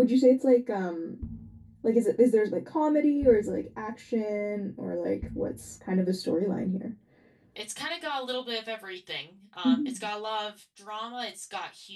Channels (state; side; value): identical; both; correlation 1.00